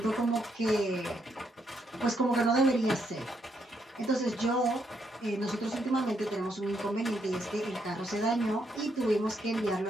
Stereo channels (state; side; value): normal; both; correlation 0.76